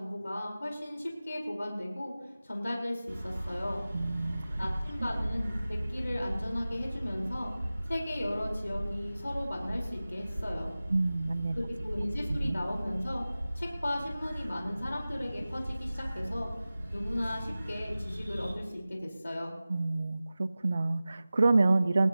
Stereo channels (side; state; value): both; inverted; correlation -0.97